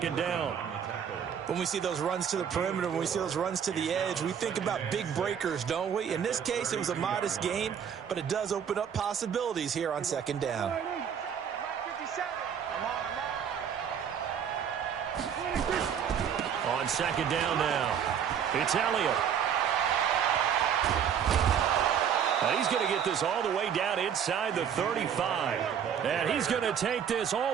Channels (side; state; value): left; quieter; 8.2 dB